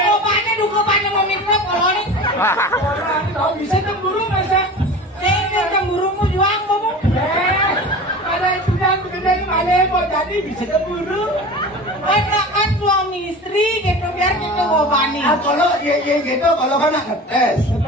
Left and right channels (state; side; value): normal; both; correlation 0.35